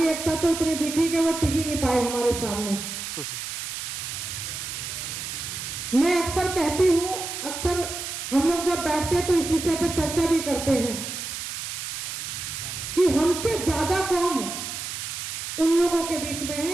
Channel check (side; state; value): right; noise; hiss, 6 dB below the sound